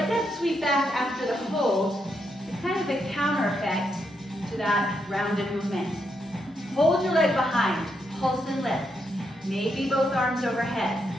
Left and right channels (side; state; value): both; normal; correlation 0.80